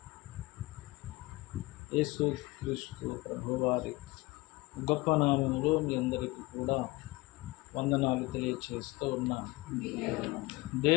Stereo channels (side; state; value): right; quieter; 21.8 dB